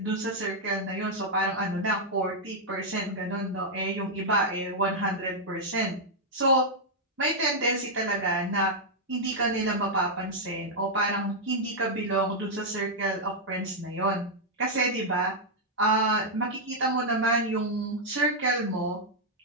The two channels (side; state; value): both; normal; correlation -0.04